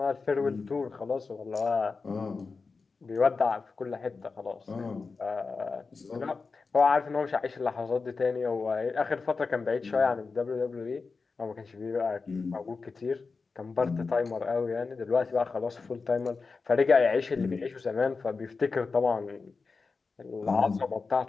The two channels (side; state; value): right; quieter; 4.4 dB